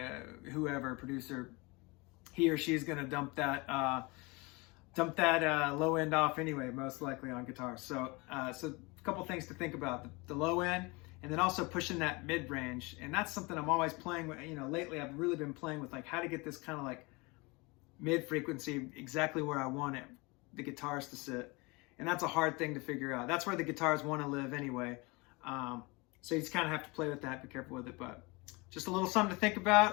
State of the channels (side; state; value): right; quieter; 26.1 dB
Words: whoever, producer, he or she's going to dump that low end off anyway, most likely on guitar. So so a couple things to think about: the low end, and then also pushing that mid range. And that's something I'm always playing with. You know, lately I've really been playing with, like, how to get this kind of like mid frequency exactly where I want it, the guitars to sit. And that's a hard thing to figure out. That's where the guitars want to live anyway. So you just kind of have to play with that, be careful with it. But just a little something to think